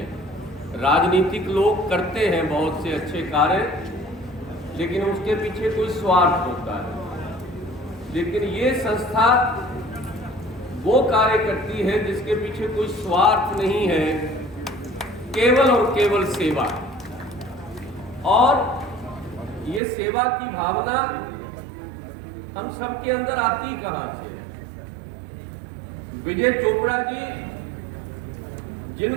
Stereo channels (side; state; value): left; drops out; at 19.8 s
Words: राजनीतिक लोग करते हैं बहुत से अच्छे कार्य, लेकिन उसके पीछे कोई स्वार्थ होता है। लेकिन ये संस्था वो कार्य करती है जिसके पीछे कोई स्वार्थ नहीं है, केवल और केवल सेवा। और ये सेवा की भावना हम सबके अंदर आती कहां से? विजय चोपड़ा जी